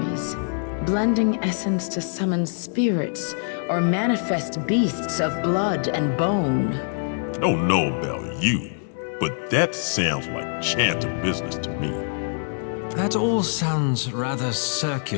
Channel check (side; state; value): right; silent; digital silence